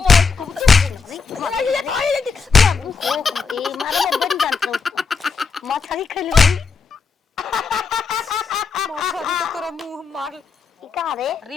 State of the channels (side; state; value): right; quieter; 5.1 dB